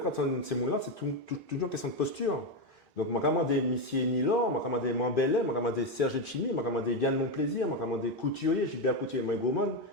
on ces mots-là, c'est toujours une question de posture. Donc, je vais demander Missier Nilor, je vais demander Mambellet, je vais demander Serge Chimi, je vais demander Yann Monplaisir, je vais demander Couturier, Gilbert Couturier, Mike Goman,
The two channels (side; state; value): both; normal; correlation 0.09